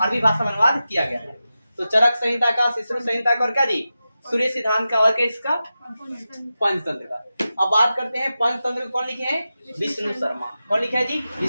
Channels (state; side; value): inverted; both; correlation -0.93